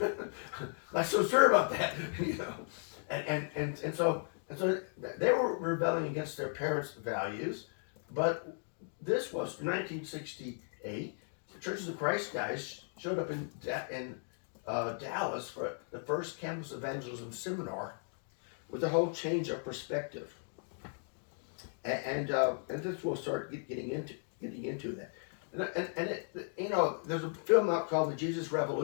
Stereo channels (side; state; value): right; silent; 54 dB below the other